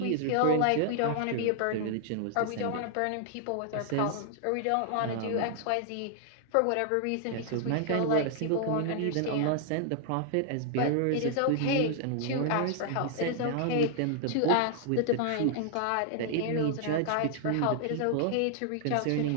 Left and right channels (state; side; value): different; both; correlation -0.01